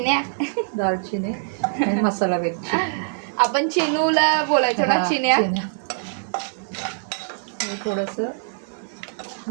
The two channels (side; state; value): left; silent; digital silence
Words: दालचिनी आणि मसाला वेलची. आपण चिनूला बोलायचो ना, चिन्या. हे थोडंसं